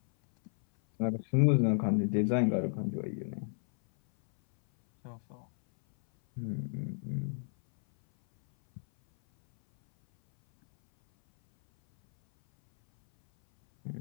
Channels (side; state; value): right; silent; 57 dB below the other